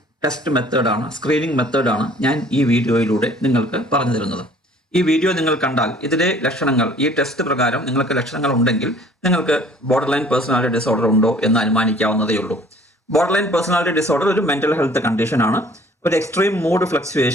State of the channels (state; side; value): normal; both; correlation 0.54